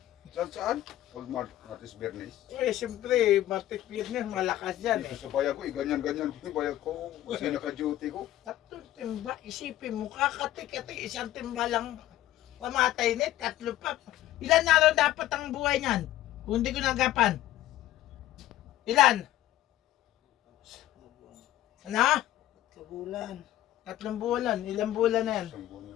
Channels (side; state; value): right; quieter; 14.2 dB